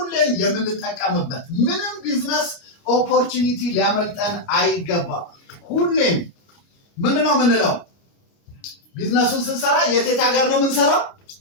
የምንጠቀምበት ምንም ቢዝነስ ኦፖርቹኒቲ ሊያመልጠን አይገባም። ሁሌም ምንድነው የምንለው? ቢዝነሱን ስንሰራ የት ሀገር ነው የምንሰራው?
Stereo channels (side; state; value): right; late; 29 ms